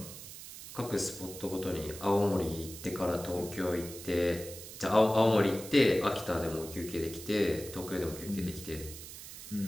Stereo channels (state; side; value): noise; right; hiss, 13 dB below the sound